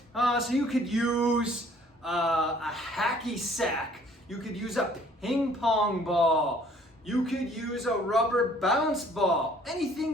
So you could use a hacky sack. You could use a ping pong ball. You could use a rubber bounce ball, anything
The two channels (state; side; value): normal; both; correlation 0.57